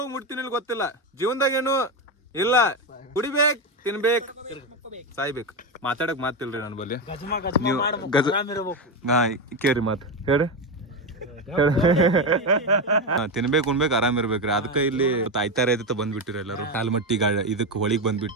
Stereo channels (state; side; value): normal; both; correlation 0.13